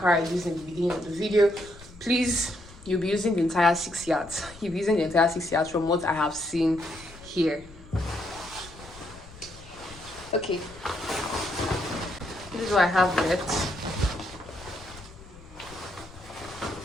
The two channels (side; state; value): left; noise; rumble, 20 dB below the sound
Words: I used in the beginning of the video. Please, you'll be using the entire 6 yards. You'll be using the entire 6 yards from what I have seen here. Okay, this is what I have left.